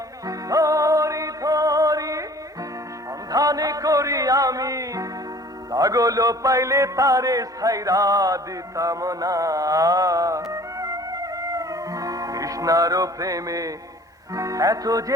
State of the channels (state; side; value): normal; both; correlation 0.50